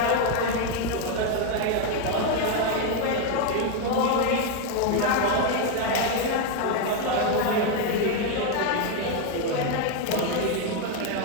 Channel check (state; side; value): different; both; correlation 0.01